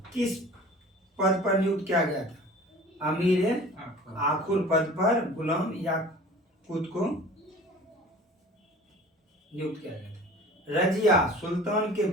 किस पद पर नियुक्त किया गया था, अमीर आखुर पद पर गुलाम याकूत को नियुक्त किया गया था। रजिया सुल्तान के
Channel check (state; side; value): normal; both; correlation 0.43